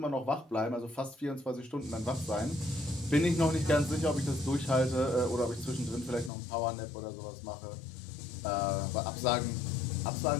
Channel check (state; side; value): drops out; right; at 6.3 s